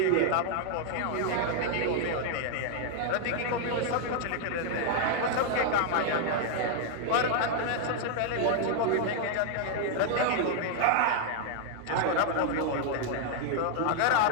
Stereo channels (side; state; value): both; different; correlation 0.00